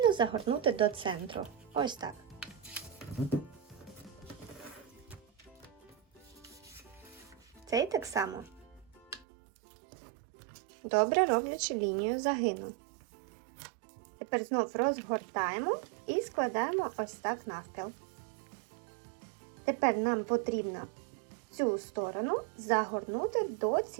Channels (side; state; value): left; drops out; at 9.2 s